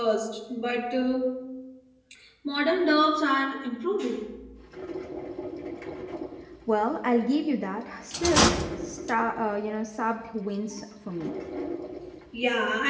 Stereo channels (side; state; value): both; identical; correlation 1.00